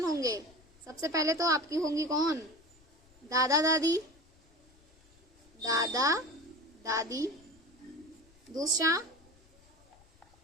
होंगे? सबसे पहले तो आपकी होंगी कौन? दादा दादी। दूसरा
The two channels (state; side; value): noise; left; rumble, 29 dB below the sound